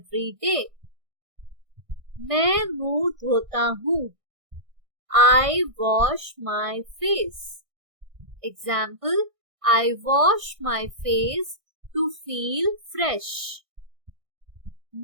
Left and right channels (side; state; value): left; late; 1.6 ms